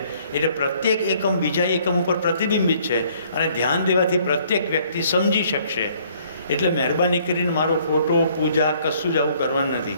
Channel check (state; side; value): inverted; both; correlation -0.62